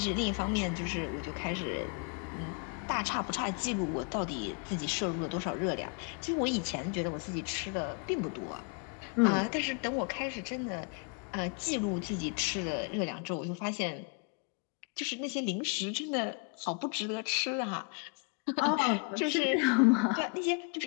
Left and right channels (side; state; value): right; quieter; 34.3 dB